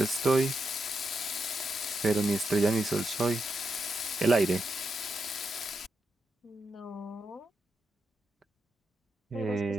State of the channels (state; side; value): normal; both; correlation 0.84